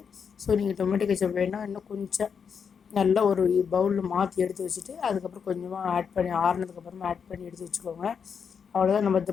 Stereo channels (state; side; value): quieter; right; 6.6 dB